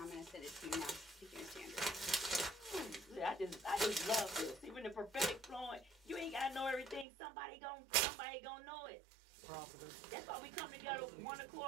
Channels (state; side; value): drops out; left; at 7.1 s